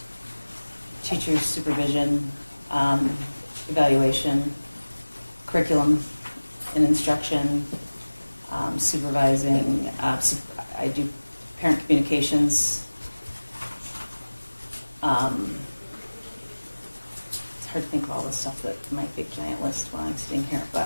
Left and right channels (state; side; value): inverted; both; correlation -1.00